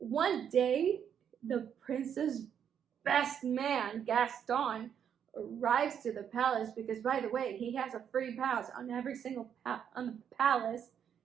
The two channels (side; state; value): left; quieter; 8.4 dB